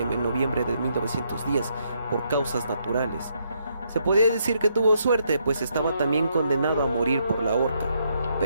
noviembre de 1910 por causas naturales. Se podía decir que tuvo suerte, pues estaba también condenado a morir por la horca.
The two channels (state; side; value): inverted; both; correlation -0.75